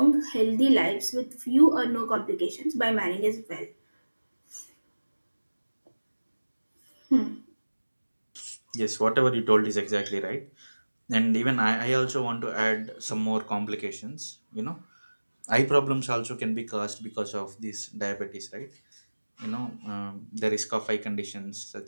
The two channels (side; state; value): both; inverted; correlation -1.00